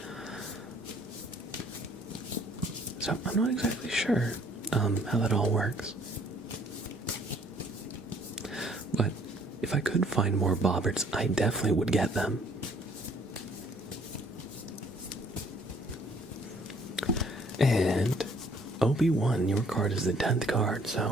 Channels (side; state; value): both; normal; correlation 0.60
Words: So I'm not exactly sure how that all works. But if I could find more Bobberts, I definitely would get them. And Obi-Wan, your card is the 10th card,